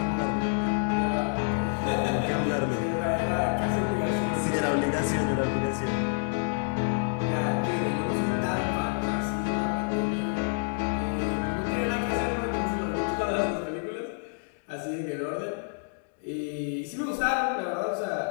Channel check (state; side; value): silent; right; digital silence